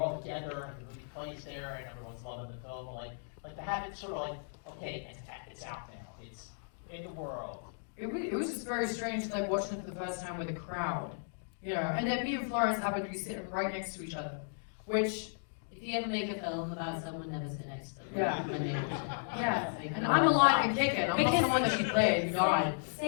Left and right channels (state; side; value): silent; right; digital silence